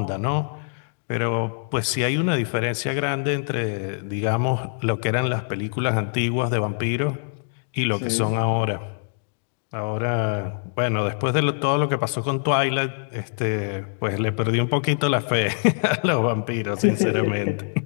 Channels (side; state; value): right; silent; digital silence